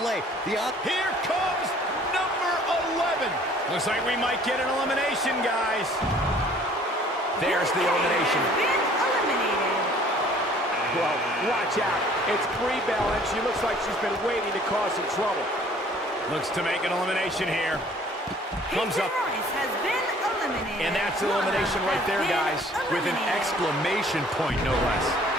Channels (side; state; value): both; normal; correlation 0.54